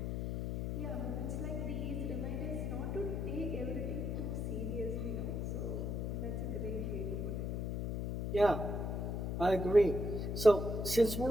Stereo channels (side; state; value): left; noise; hum, 1 dB below the sound